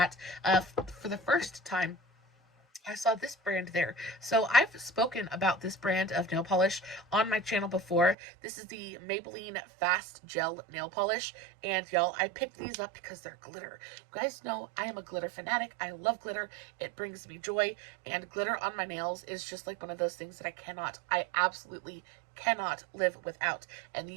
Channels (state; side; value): drops out; left; at 8.2 s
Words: For the first time, I saw this brand there. So I've spoken about this brand of nail polish on my channel before. This is the Maybelline Fast Gel Nail Polish. And y'all, I picked these up because they're glitter. You guys know I am a glitter fanatic. I love glitter. It brings me joy. And glitter on my nails is just like one of those things that I absolutely cannot live without. And